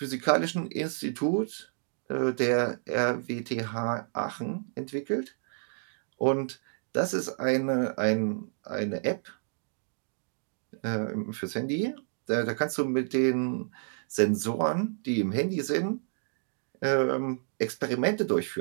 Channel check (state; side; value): silent; left; digital silence